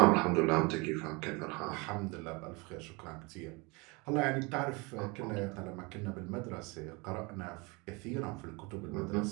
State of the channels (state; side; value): quieter; left; 27.7 dB